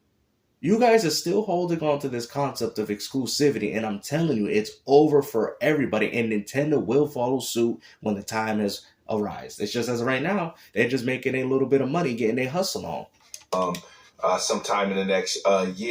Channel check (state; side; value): identical; both; correlation 1.00